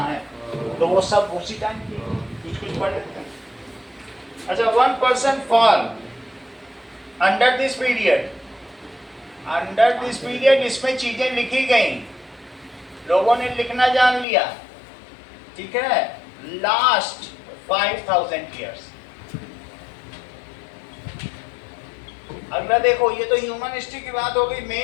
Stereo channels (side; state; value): right; drops out; at 14.2 s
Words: है, तो वो सब उसी टाइम की कुछ कुछ पढ़ लेते हैं। अच्छा, 1% fall under this period. Under this period इसमें चीजें लिखी गई, लोगों ने लिखना जान लिया। ठीक है, लास्ट 5000 ईयर्स। अगला देखो, ये तो ह्यूमन हिस्ट्री की बात हो गई।